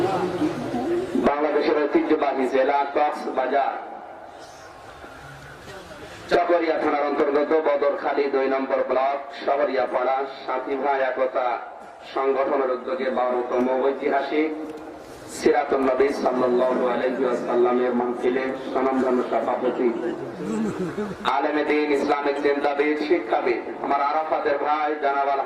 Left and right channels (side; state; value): both; identical; correlation 1.00